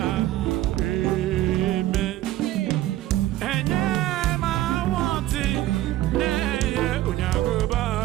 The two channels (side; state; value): left; quieter; 15.0 dB